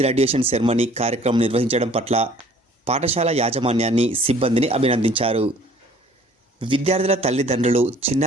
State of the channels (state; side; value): normal; both; correlation 0.54